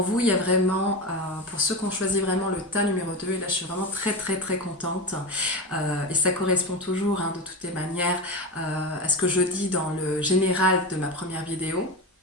vous, il y a vraiment, pour ceux qui ont choisi vraiment le tas numéro 2, et là je suis vraiment très contente, et ça correspond toujours, hein, de toutes les manières à ce que je dis dans le général de ma première vidéo.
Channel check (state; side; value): normal; both; correlation 0.21